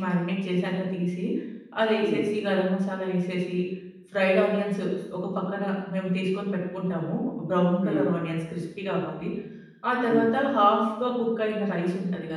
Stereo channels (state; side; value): identical; both; correlation 1.00